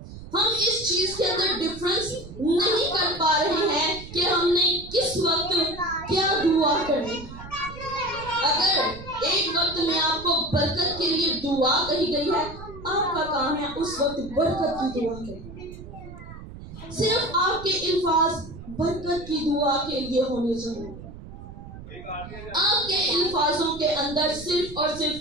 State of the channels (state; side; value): noise; right; rumble, 14 dB below the sound